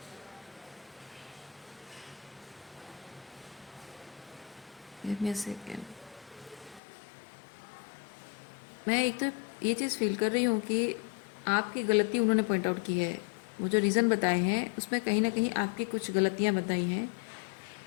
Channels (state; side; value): drops out; right; at 6.8 s